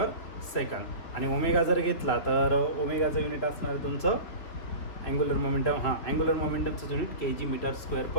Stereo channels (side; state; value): right; late; 3.6 ms